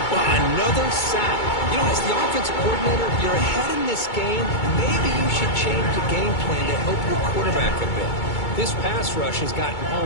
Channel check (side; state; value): right; late; 2.2 ms